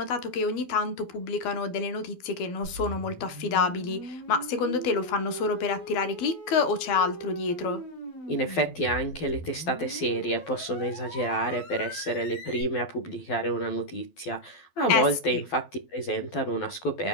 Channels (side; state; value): right; late; 12 ms